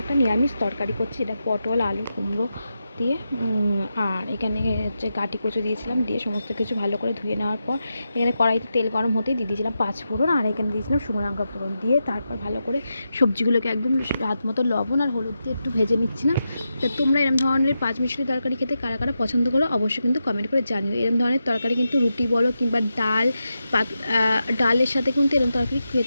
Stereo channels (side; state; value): both; inverted; correlation -0.88